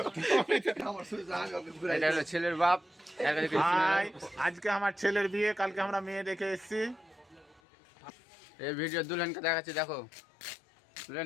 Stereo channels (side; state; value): right; drops out; at 7.6 s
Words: এটা হলো ছেলের বাপ। আজকে আমার ছেলের বিয়ে, কালকে আমরা মেয়ে দেখে এসেছি। এই ভিডিও দুলহানকে দেখাচ্ছি, দেখো দুলহান